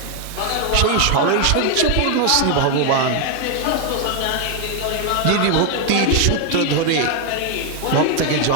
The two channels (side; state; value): both; different; correlation 0.01